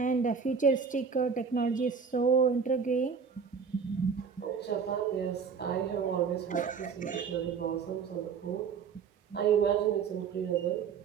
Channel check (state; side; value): quieter; left; 6.1 dB